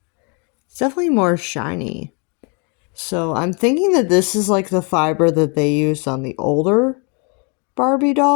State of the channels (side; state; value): right; quieter; 34.9 dB